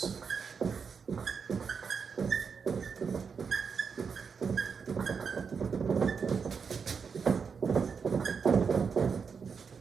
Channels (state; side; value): quieter; left; 5.9 dB